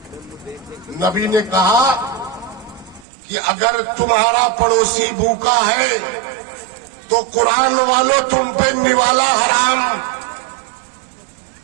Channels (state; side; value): drops out; left; at 3.1 s